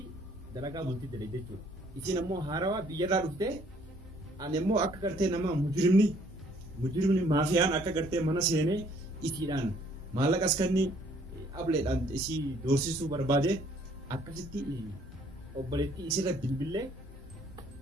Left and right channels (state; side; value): normal; both; correlation 0.62